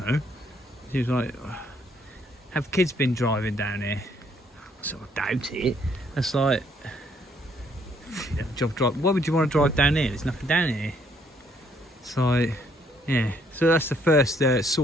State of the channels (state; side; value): normal; both; correlation 0.68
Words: know. She was like, have kids been driving down here? I sort of doubt it. That's like, why would you want to drive down here? There's nothing down here. It's like, yeah. So that's the first